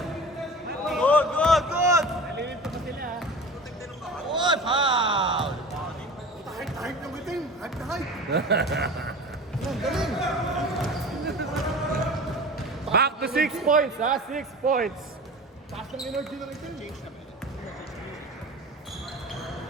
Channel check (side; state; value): both; normal; correlation 0.36